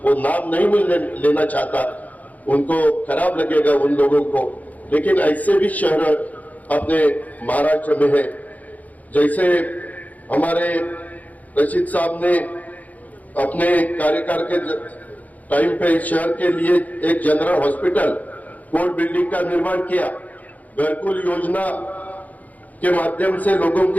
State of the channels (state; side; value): late; right; 0.077 ms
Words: वो नाम नहीं लेना चाहता, उनको खराब लगेगा उन लोगों को, लेकिन ऐसे भी शहर अपने महाराष्ट्र में है। जैसे हमारे रशीद साहब ने अपने कार्यकाल के टाइम पे शहर के लिए एक जनरल हॉस्पिटल कोर्ट बिल्डिंग का निर्माण किया। घरकुल योजना के माध्यम से लोगों